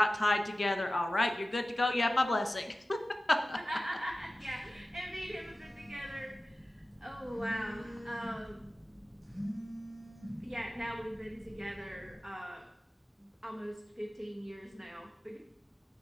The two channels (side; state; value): both; normal; correlation 0.96